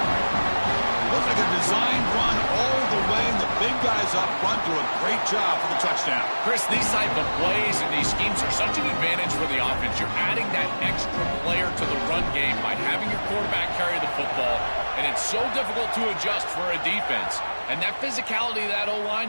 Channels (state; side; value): inverted; both; correlation -1.00